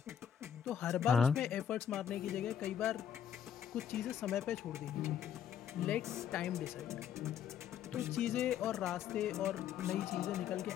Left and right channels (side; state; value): right; quieter; 9.0 dB